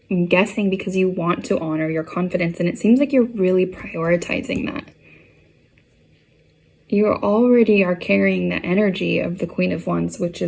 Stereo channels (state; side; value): identical; both; correlation 1.00